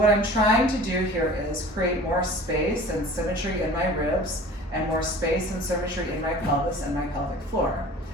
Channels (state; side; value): normal; both; correlation 0.43